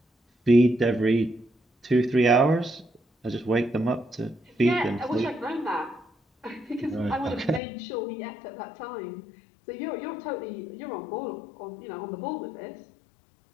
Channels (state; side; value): drops out; right; at 7.6 s